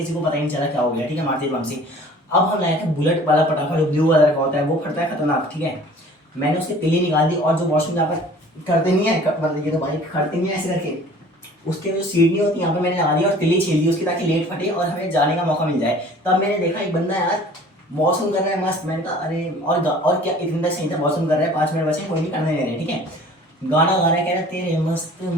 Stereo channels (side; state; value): both; normal; correlation 0.48